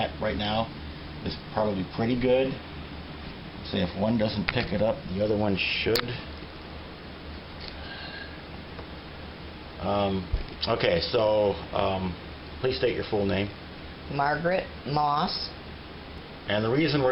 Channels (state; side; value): identical; both; correlation 1.00